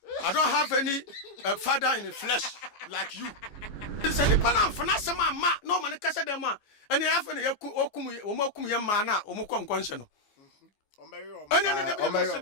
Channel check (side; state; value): right; late; 15 ms